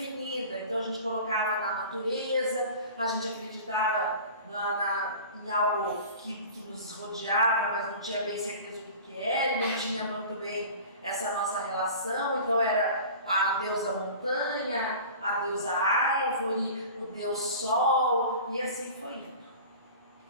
vida. Então a gente colocava na natureza, a gente acreditava em algo que nos rodeava, mas não tinha bem certeza do que era, e não tinha muito bem essa nossa relação. Então era a deusa montanha, a deusa árvore, o deus sol, e assim foi indo.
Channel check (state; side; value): inverted; both; correlation -0.39